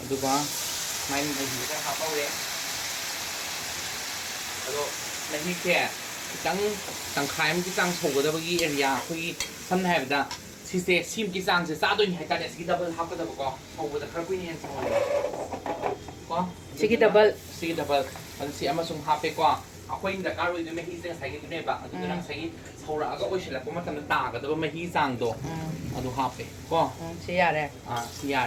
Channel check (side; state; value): both; identical; correlation 1.00